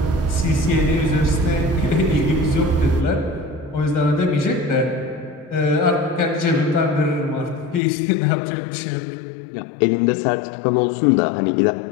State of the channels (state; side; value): drops out; right; at 7.8 s